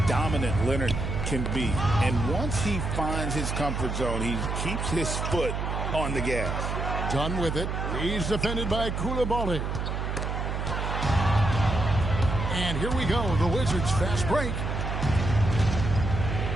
dominant Leonard can be. And once he finds his comfort zone, he keeps his foot on the gas. Done with it. He's defended by Koulibaly. And here we go. The Wizards fast break.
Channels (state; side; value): noise; right; hum, 2 dB below the sound